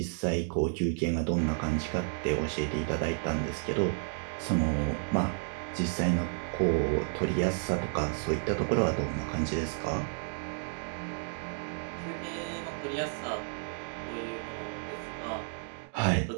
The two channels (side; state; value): left; silent; 55 dB below the other